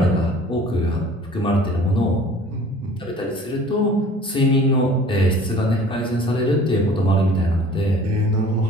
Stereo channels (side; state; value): both; normal; correlation 0.48